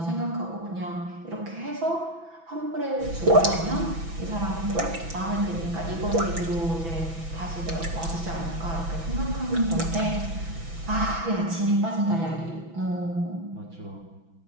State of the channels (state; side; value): late; left; 6.0 ms